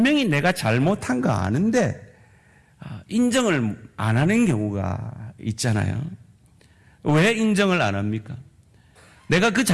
내가 잘못한 거 아는데 인정을 안 하는 경우가 있잖아요. 왜 인정을 안 합니까? 내가 그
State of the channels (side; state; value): both; identical; correlation 1.00